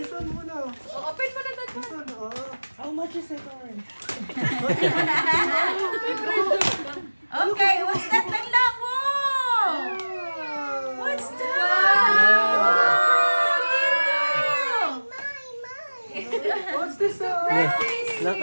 one muna. Oh, open mo na that This one. one, oh. How much is it, Oren? Okay, what's that lang lang? Wow. What's that? What's this? Eh,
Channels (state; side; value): inverted; both; correlation -1.00